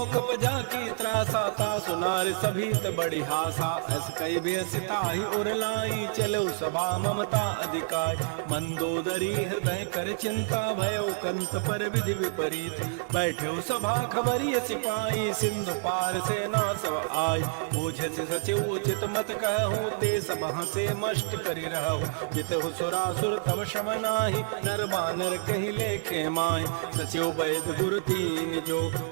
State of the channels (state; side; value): silent; left; digital silence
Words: बजा की त्रासा ता सुनार सभी त बड़ी हासा अस कई बेसिता ही उर लाई चलो सभा ममता अधिकार मंदोदरी हृदय कर चिंता भयो कंत पर विधि विपरीत बैठो सभा खबरिय सिपाही सिंधु पार से ना सब आय मुझे से सचिव उचित मत कहूँ ते सभा से मष्ट करी रहूँ जित सुरासुर तब शम नाही नर बानर कहीं लेके माय सचिव वैद गुरु तीन जो